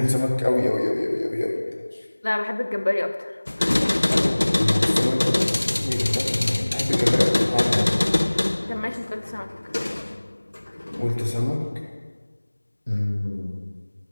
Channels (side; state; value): both; inverted; correlation -1.00